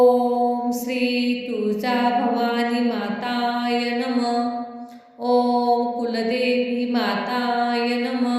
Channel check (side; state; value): both; identical; correlation 1.00